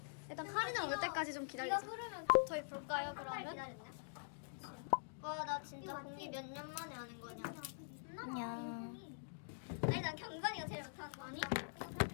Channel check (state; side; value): silent; right; digital silence